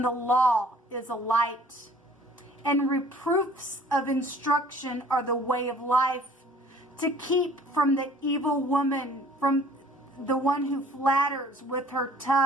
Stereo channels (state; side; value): normal; both; correlation 0.53